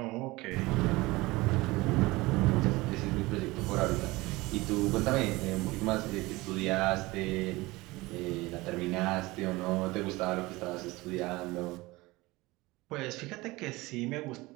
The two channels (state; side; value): quieter; left; 21.2 dB